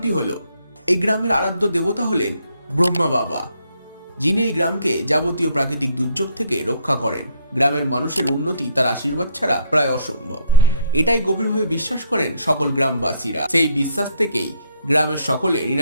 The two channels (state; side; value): inverted; both; correlation -0.66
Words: হলো এই গ্রামের আরাধ্য দেবতা হলেন ব্রহ্মা বাবা, যিনি এই গ্রামকে যাবতীয় প্রাকৃতিক দুর্যোগ থেকে রক্ষা করেন। গ্রামের মানুষের উন্নতি তার আশীর্বাদ ছাড়া প্রায় অসম্ভব, এটাই গভীরভাবে বিশ্বাস করেন সকল গ্রামবাসীরা। সেই বিশ্বাস থেকেই গ্রামের সকলে